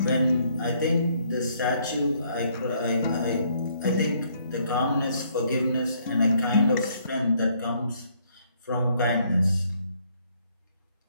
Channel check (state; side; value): inverted; both; correlation -0.68